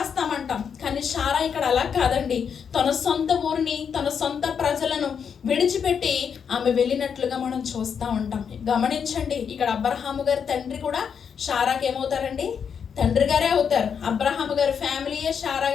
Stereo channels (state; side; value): quieter; right; 7.1 dB